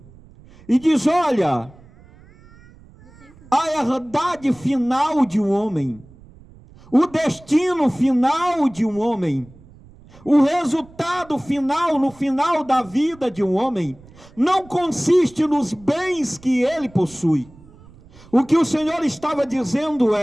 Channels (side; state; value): right; noise; rumble, 24 dB below the sound